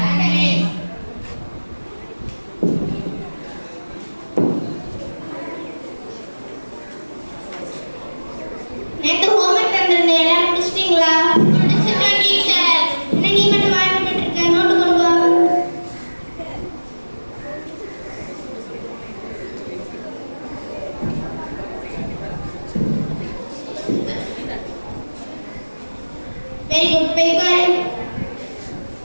நேத்து homework தந்திருந்தேன் எல்லாரும் முடிச்சிட்டீங்களா? முடிச்சிட்டேன் டீச்சர். என்ன நீ மட்டும் வாய் மூடிட்டு இருக்க? நோட்டு கொண்டு வா. Very good. போய் உட்காரு.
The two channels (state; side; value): inverted; both; correlation -1.00